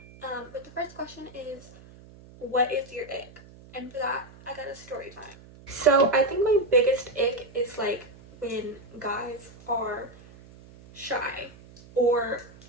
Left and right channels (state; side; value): noise; right; hum, 21 dB below the sound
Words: But the first question is, what is your ick? And for that, I got a story time. So I think my biggest ick is when guys are shy or